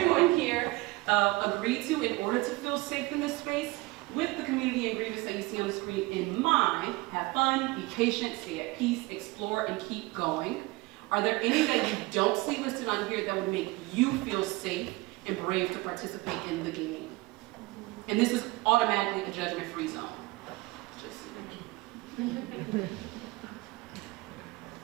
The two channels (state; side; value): quieter; left; 22.1 dB